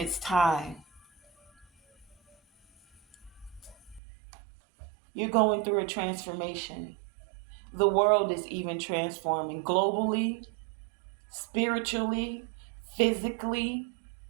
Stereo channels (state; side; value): drops out; left; at 4.0 s